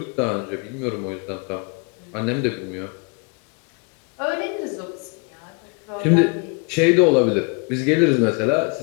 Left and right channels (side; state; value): right; quieter; 33.8 dB